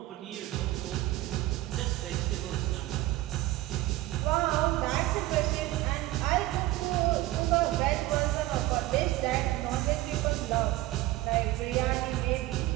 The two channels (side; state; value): left; quieter; 16.6 dB